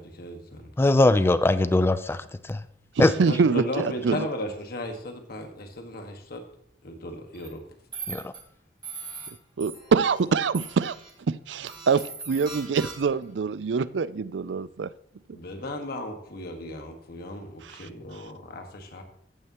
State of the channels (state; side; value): normal; both; correlation 0.43